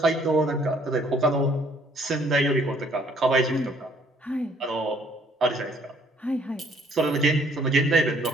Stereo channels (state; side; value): normal; both; correlation 0.62